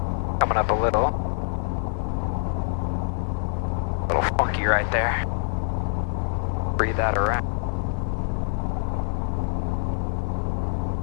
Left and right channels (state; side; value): silent; right; digital silence